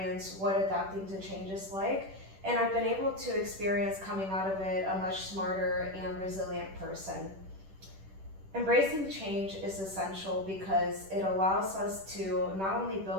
what adapting to change is like, and I've been able to experience coming out of it a much smarter and resilient person. Embracing change is essential because it allows us to not only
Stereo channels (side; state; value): left; late; 10 ms